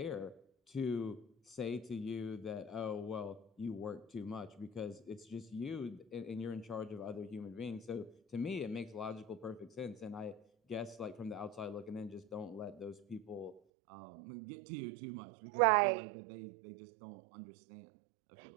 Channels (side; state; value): left; drops out; at 13.6 s